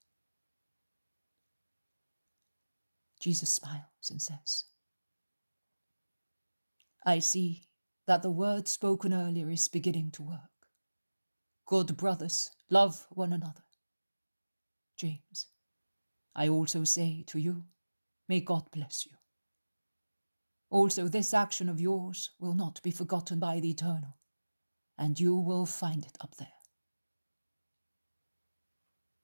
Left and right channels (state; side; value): inverted; both; correlation -1.00